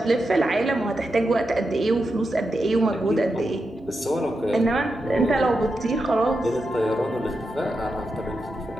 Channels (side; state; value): both; normal; correlation 0.87